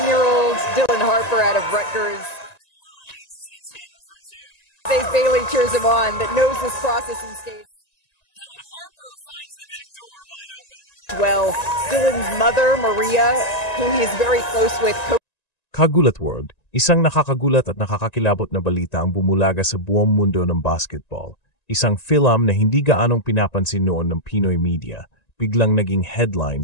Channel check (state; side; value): late; right; 1.9 ms